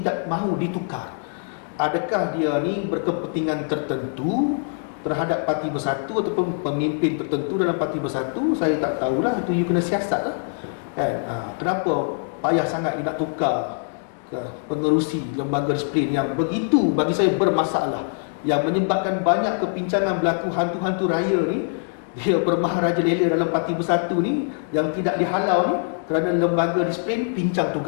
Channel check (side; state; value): right; silent; 63 dB below the other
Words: mahu ditukar. Adakah dia ni berkepentingan tertentu terhadap Parti Bersatu ataupun pemimpin tertentu dalam Parti Bersatu? Saya tak tahulah, itu you kena siasat lah kan. Kenapa payah sangat you nak tukar ke pengerusi lembaga disiplin yang begitu bagi saya bermasalah, yang menyebabkan banyak kepincangan berlaku, hantu-hantu raya ni dia bermaharajalela dalam Parti Bersatu ni yang tidak dihalau ni kerana lembaga disiplin pincang